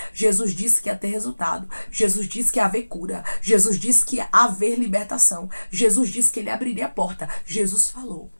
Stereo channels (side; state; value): both; inverted; correlation -1.00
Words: Jesus disse que ia ter resultado. Jesus disse que ia haver cura. Jesus disse que ia haver libertação. Jesus disse que ele abriria a porta. Jesus falou.